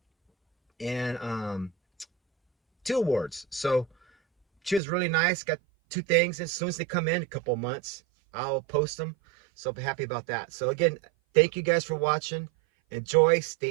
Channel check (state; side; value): drops out; left; at 4.8 s